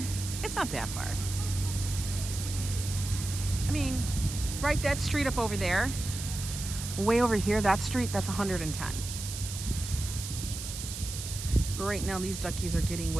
It's not that far. I mean, right, that street up over there, way over here, that street, that's 110. But right now, these duckies are getting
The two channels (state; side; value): noise; right; hiss, 8 dB below the sound